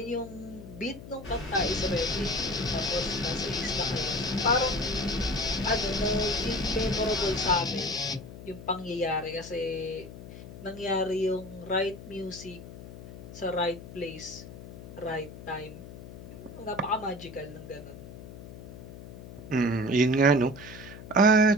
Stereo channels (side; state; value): left; noise; hum, 14 dB below the sound